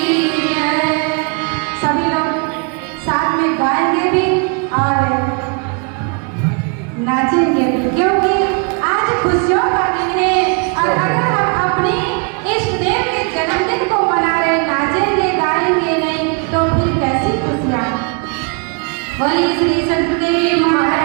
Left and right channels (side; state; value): left; quieter; 36.7 dB